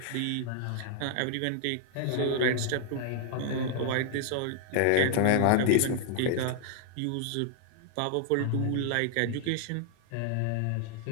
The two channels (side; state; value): both; different; correlation -0.01